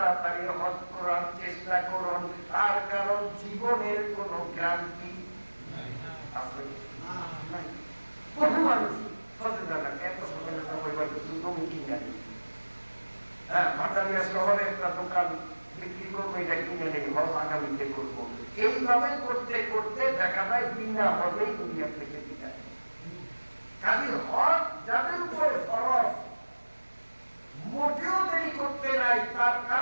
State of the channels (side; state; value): both; inverted; correlation -1.00